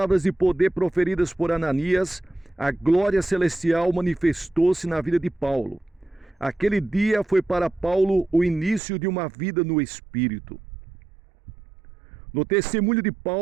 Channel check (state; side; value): drops out; left; at 8.8 s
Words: de poder proferidas por Ananias, a glória celestial manifestou-se na vida de Paulo. Aquele dia foi para Paulo o início de uma vida no Espírito. No testemunho de